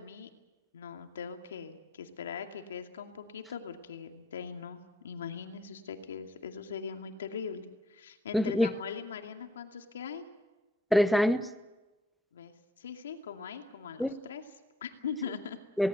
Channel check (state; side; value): normal; both; correlation 0.68